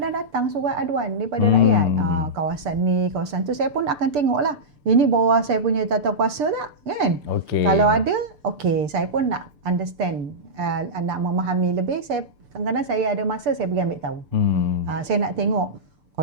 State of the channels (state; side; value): late; left; 6.8 ms